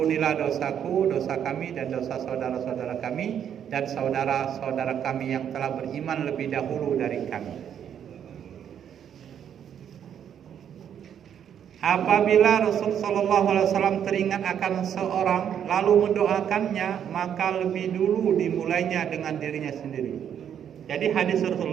dosaku, dosa kami, dan dosa saudara-saudara kami, dan saudara-saudara kami yang telah beriman lebih dahulu dari kami. Apabila Rasul sallallahu alaihi wasallam teringat akan seorang lalu mendoakannya, maka lebih dulu dimulainya dengan dirinya sendiri. Jadi hadis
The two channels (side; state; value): left; quieter; 9.0 dB